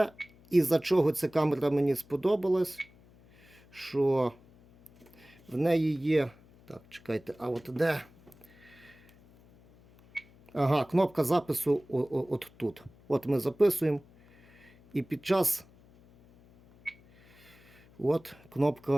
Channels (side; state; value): left; noise; hum, 27 dB below the sound